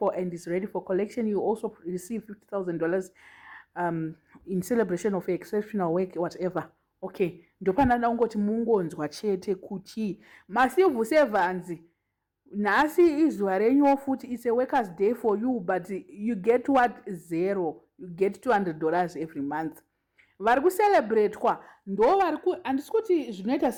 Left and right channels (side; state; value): both; identical; correlation 1.00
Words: and is ready for collection. You also receive $50,000 in celebration of your exceptional work, whatever. Okay, ndopanda ungoti mungonzwa chete kuti Massive Sevanzi nasi izwa renyu futhi it's a workers day for you, but you get what? Zero. You get $200 every month. Vari kucelebrate kwa ndo vari ku andisikuti zvinoita